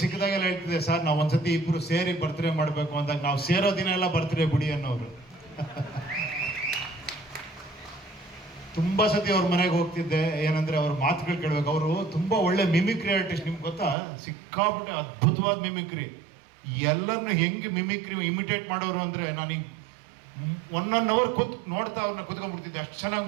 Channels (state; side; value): drops out; left; at 14.0 s